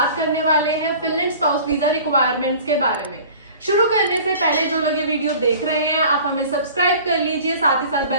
करने वाले हैं फिनलैंड स्पाउस वीजा रिक्वायरमेंट्स के बारे में। शुरू करने से पहले जो लोग ये वीडियो देख रहे हैं, आप हमें सब्सक्राइब कर लीजिए, साथ ही साथ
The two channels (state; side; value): inverted; both; correlation -0.44